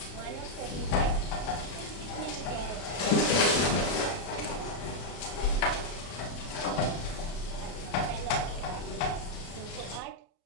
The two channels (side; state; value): right; late; 33 ms